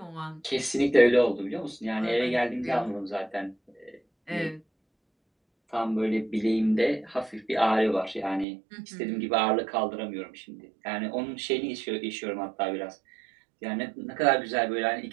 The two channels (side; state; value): left; drops out; at 8.5 s